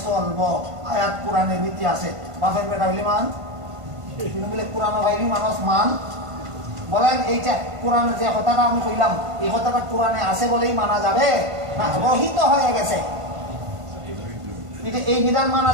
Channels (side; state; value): left; late; 1.5 ms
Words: চলবো। আয়াত কোরআনের ভিত্তি আছে। বাপের বেটা হইলে মান, বলে কোরআন ভাইলি মানুষ মান। বলেন এইটা কোরআনে যে কথাটা আমি কইলাম এই কথাটা কোরআনে আছে বলেই মানা যাবে না রহিত হয়ে গেছে? এটা এই বিধান মানা